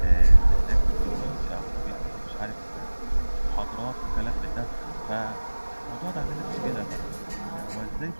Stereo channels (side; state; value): both; inverted; correlation -1.00